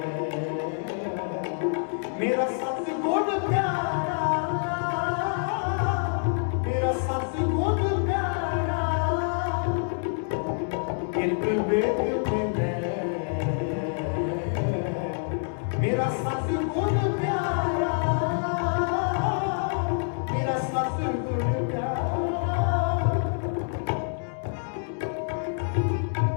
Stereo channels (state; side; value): silent; right; 60 dB below the other